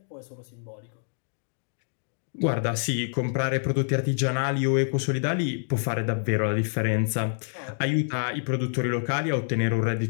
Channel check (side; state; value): right; silent; digital silence